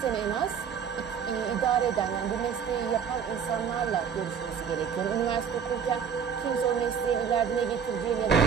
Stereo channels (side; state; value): left; quieter; 7.3 dB